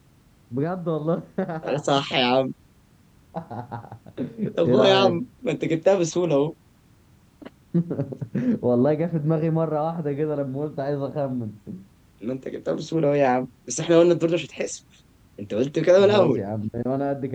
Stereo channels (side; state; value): both; identical; correlation 1.00